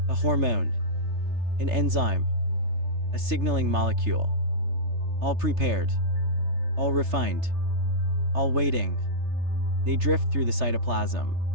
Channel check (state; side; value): late; left; 3.3 ms